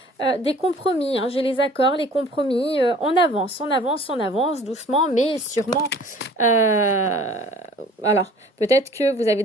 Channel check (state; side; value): normal; both; correlation 0.50